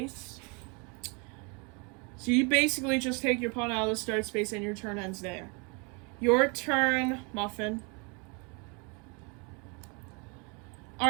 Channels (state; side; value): quieter; left; 32.6 dB